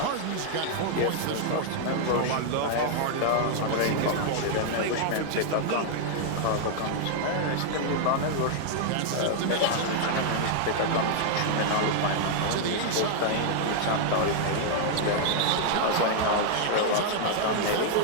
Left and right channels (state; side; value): different; both; correlation -0.01